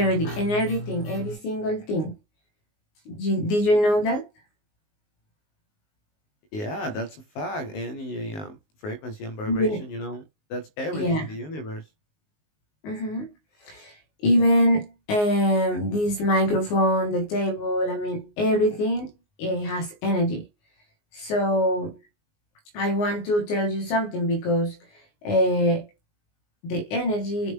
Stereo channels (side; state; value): right; late; 19 ms